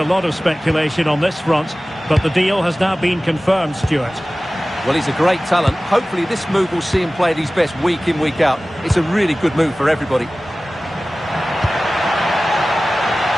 lot of speculation on this front, but the deal has now been confirmed, Stuart. Well, he's a great talent. Hopefully this move will see him play at his best week in, week out. It's a really good move for everybody.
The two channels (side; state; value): both; normal; correlation 0.97